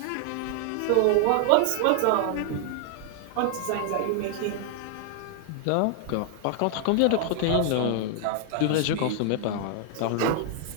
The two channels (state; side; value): different; both; correlation 0.00